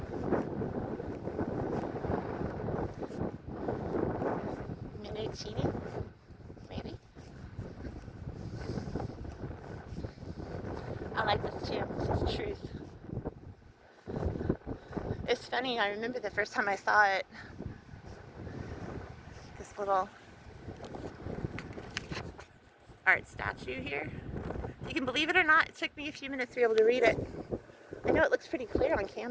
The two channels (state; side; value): identical; both; correlation 1.00